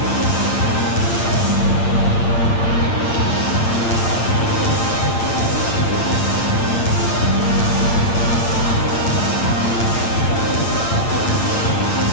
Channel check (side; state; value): right; late; 8.8 ms